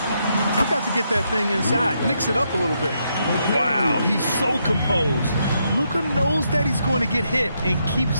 you've got to get that thing inside. Mix it up a little bit. Wow, he's so composed. Luka knows that he's going to get hit and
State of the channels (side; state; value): both; inverted; correlation -0.79